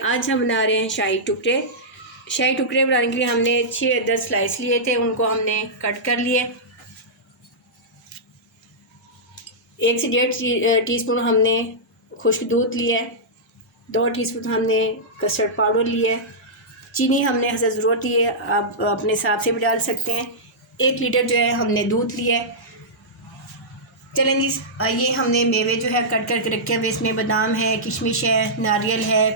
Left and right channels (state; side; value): normal; both; correlation -0.13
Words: हम बना रहे हैं शाही टुकड़े। शाही टुकड़े बनाने के लिए हमने 6-10 स्लाइस लिए थे, उनको हमने कट कर लिए। 1 से 1.5 टीस्पून हमने खुश्क दूध लिया है। 2 टीस्पून हमने कस्टर्ड पाउडर लिया है। चीनी हमने हसब ज़रूरत ही है, आप अपने हिसाब से भी डाल सकते हैं। 1 लीटर जो है हमने दूध लिया है। चलें जी, ये हमने मेवे जो है कट करके रखे हुए, इसमें बादाम है, किशमिश है, नारियल है,